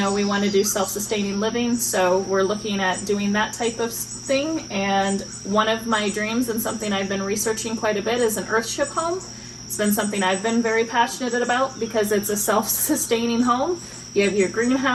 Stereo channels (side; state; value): both; identical; correlation 1.00